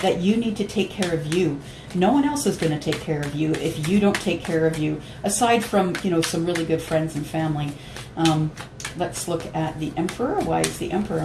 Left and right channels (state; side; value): identical; both; correlation 1.00